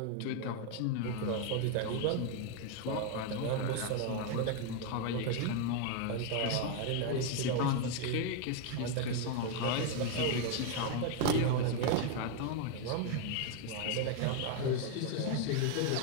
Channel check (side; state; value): both; different; correlation 0.01